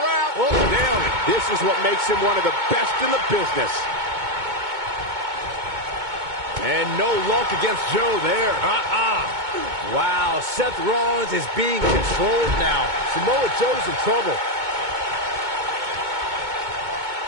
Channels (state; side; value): late; left; 2.2 ms